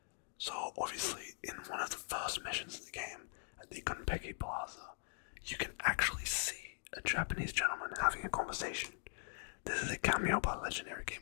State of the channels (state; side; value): silent; right; digital silence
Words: So, obviously, in one of the first missions in the game, at the Gunpeki Plaza, you can actually see a Japanese gentleman having a conversation. This is a cameo by legendary